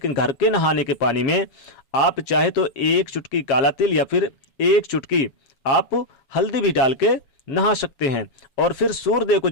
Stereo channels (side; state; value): right; late; 7.1 ms